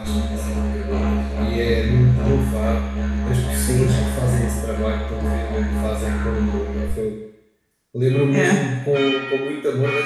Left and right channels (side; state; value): both; identical; correlation 1.00